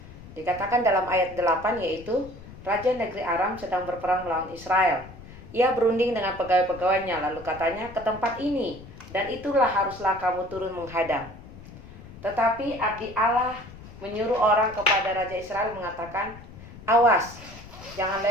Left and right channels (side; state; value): left; noise; rumble, 17 dB below the sound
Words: Dikatakan dalam ayat 8 yaitu, Raja negeri Aram sedang berperang melawan Israel. Ia berunding dengan pegawai-pegawainya, lalu katanya, ke tempat ini, dan itulah haruslah kamu turun menghadang. Tetapi abdi Allah menyuruh orang kepada Raja Israel mengatakan, awas, jangan